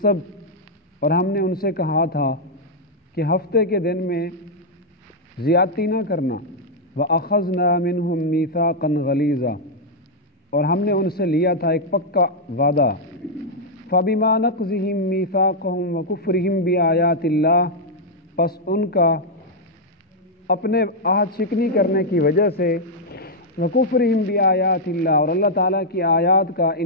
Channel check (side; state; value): both; normal; correlation -0.04